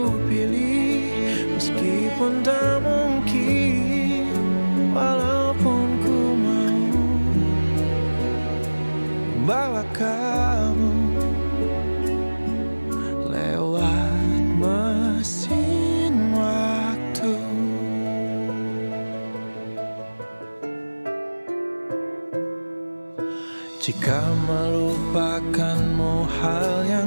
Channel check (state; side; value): inverted; both; correlation -1.00